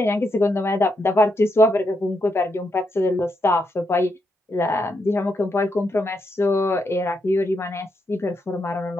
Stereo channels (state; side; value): normal; both; correlation 0.81